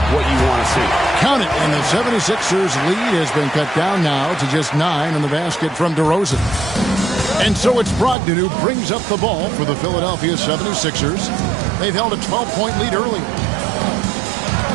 you want to see. Count it, and the 76ers lead has been cut down now to just 9 in the basket from DeRozan. And so it's Brogdon who brings up the ball for the Philadelphia 76ers. They've held a 12-point lead early.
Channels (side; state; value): left; drops out; at 8.2 s